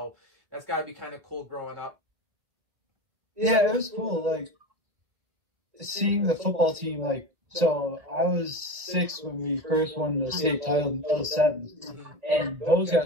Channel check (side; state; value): left; late; 1.5 ms